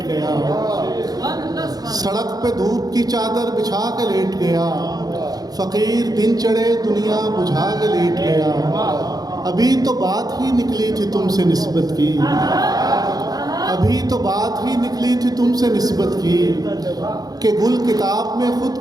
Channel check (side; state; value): left; late; 0.19 ms